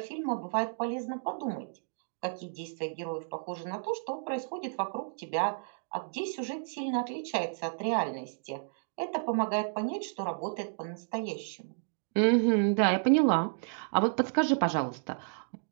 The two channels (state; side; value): silent; left; digital silence